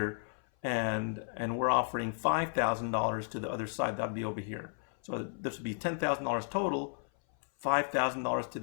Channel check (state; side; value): silent; right; 55 dB below the other